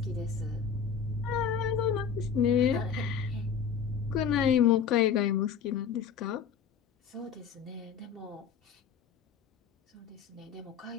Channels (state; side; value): quieter; right; 6.9 dB